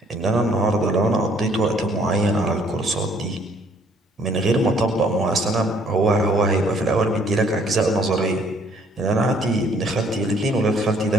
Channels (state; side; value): normal; both; correlation 0.62